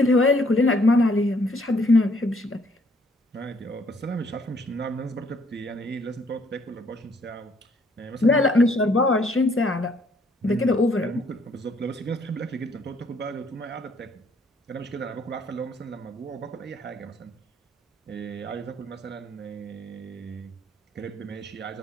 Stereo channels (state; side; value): normal; both; correlation 0.64